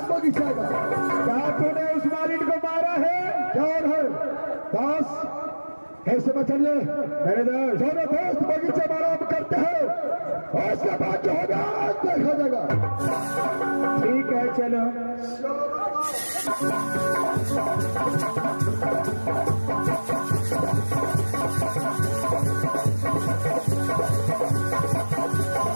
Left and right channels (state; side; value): inverted; both; correlation -1.00